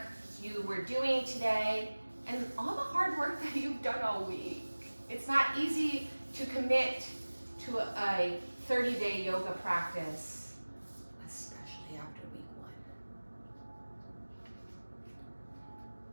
you were doing today and all the hard work that you've done all week. It's not easy to commit to a 30-day yoga practice, especially after week 1.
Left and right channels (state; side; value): inverted; both; correlation -1.00